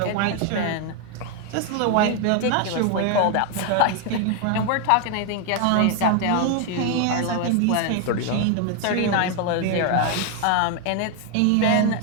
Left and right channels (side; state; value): both; different; correlation 0.01